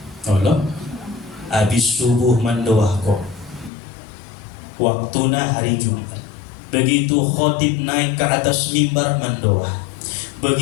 Allah habis subuh mandoah ko. Waktuna hari Jumat. Begitu khotib naik ke atas mimbar mandoah.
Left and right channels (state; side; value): drops out; right; at 3.7 s